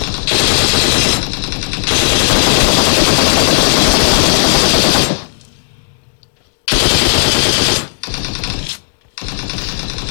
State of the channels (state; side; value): silent; right; digital silence